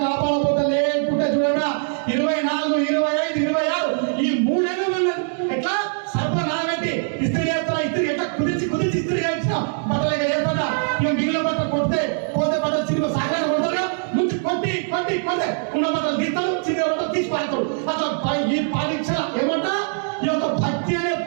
కాపాడబోతే లేకుంటే చూడరా 24, 25, 26 ఈ 3 ఏళ్ళు ఎట్లా సర్ప నానబెట్టి ఇస్త్రీ చేస్తారా? ఇస్త్రీ ఎట్లా కుదిర్చి ఇస్త్రీ చేయించిన బట్టలుగా చేస్తాడా? ఇక మిగిలిన బట్ట కొడితే పోతే బట్టలు చిన్న సాగర కొడతారుగా. ముందు కొట్టి ఉన్న బట్టలు తీస్తారు, చిన్న బట్టలు తీసి పాడతారు. అసలు ఈ పరీక్ష ఏమంటా? ఈ యొక్క భక్తి అనే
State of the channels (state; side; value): silent; left; 64 dB below the other